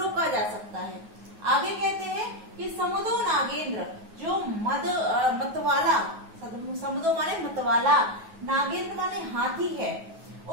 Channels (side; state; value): left; late; 9.3 ms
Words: जा सकता है। आगे कहते हैं कि समुदो नागेंद्र, जो मतवाला, समुदो माने मतवाला, नागेंद्र माने हाथी है,